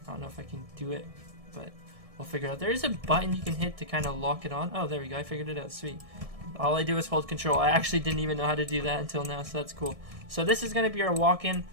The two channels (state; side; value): late; left; 1.7 ms